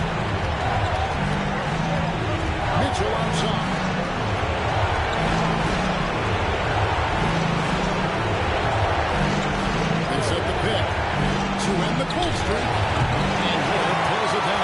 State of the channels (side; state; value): both; identical; correlation 1.00